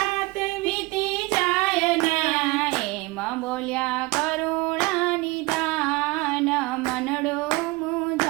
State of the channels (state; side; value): quieter; left; 23.1 dB